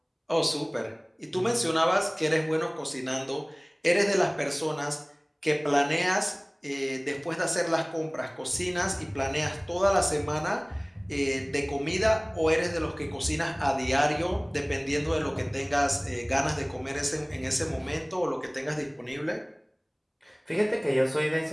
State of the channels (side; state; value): both; identical; correlation 1.00